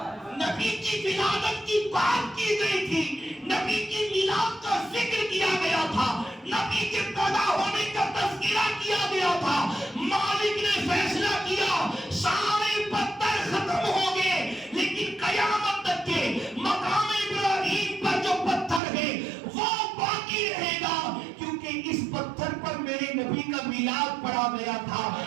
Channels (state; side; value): drops out; left; at 18.8 s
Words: نبی کی ولادت کی بات کی گئی تھی، نبی کی میلاد کا ذکر کیا گیا تھا، نبی کے پیدا ہونے کا تذکرہ کیا گیا تھا. مالک نے فیصلہ کیا سارے پتھر ختم ہو گئے لیکن قیامت تک کے مقام ابراہیم پر جو پتھر ہے وہ باقی رہے گا، کیونکہ اس پتھر پر میرے نبی کا میلاد پڑھا گیا تھا.